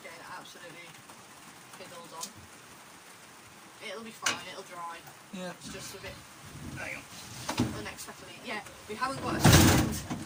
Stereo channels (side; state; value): both; identical; correlation 1.00